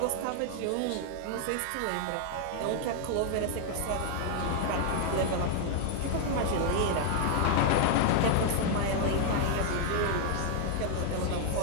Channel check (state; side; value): different; both; correlation 0.00